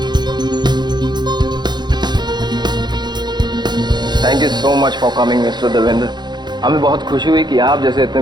Thank you so much for coming mister Devendra. हमें बहुत खुशी हुई कि आप जैसे इतने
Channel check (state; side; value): late; left; 0.21 ms